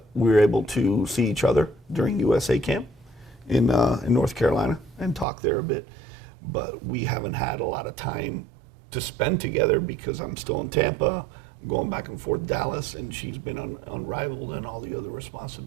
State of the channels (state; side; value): drops out; left; at 5.2 s